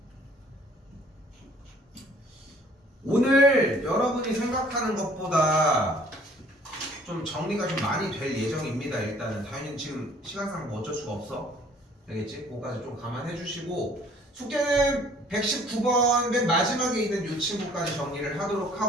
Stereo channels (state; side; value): normal; both; correlation 0.56